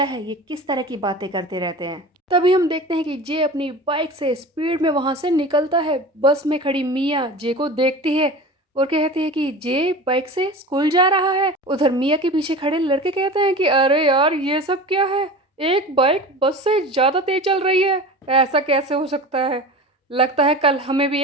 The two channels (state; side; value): normal; both; correlation 0.34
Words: है, ये किस तरह की बातें करते रहते हैं। तभी हम देखते हैं कि जे अपनी बाइक से स्पीड में वहां से निकलता है। बस में खड़ी मिया जे को देखती है और कहती है कि जे बाइक से स्कूल जा रहा है। उधर मिया के पीछे खड़े लड़के कहते हैं कि अरे यार, ये सब क्या है, एक बाइक बस से ज्यादा तेज चल रही है, ऐसा कैसे हो सकता है? लगता है कल हमें भी